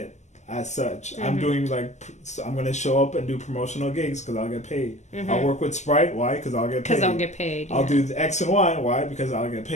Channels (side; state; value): right; late; 0.33 ms